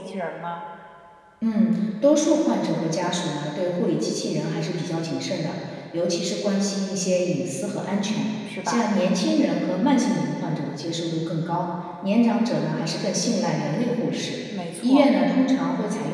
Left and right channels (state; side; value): identical; both; correlation 1.00